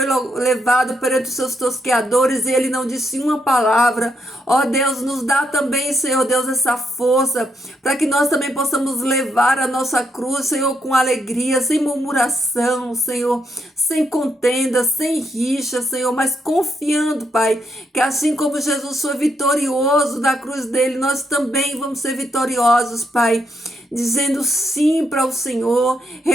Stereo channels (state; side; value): normal; both; correlation 0.78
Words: levado perante os seus tosqueadores e ele não disse uma palavra. Ó Deus, nos dá também, Senhor Deus, essa força para que nós também possamos levar a nossa cruz, Senhor, com alegria, sem murmuração, Senhor, sem contenda, sem rixa, Senhor, mas confiando, Pai, que assim como Jesus foi vitorioso da cruz dele, nós também vamos ser vitoriosos, Pai, dizendo sim para o Senhor,